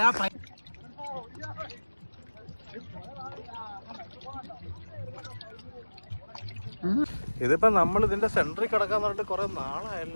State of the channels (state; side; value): inverted; both; correlation -1.00